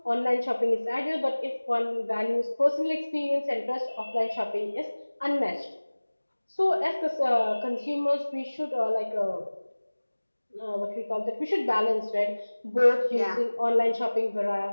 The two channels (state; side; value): inverted; both; correlation -1.00